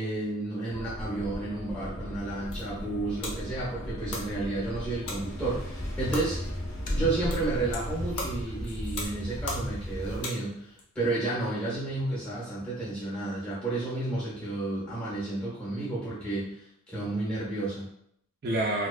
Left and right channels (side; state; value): both; normal; correlation 0.56